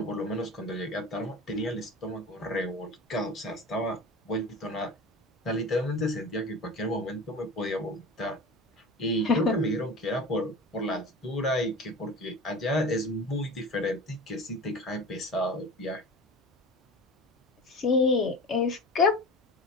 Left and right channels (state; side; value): normal; both; correlation 0.34